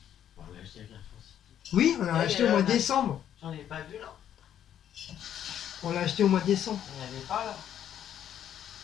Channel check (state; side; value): quieter; right; 10.1 dB